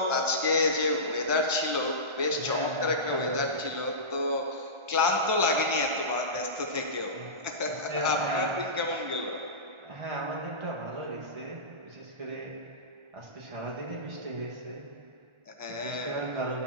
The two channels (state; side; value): late; left; 1.4 ms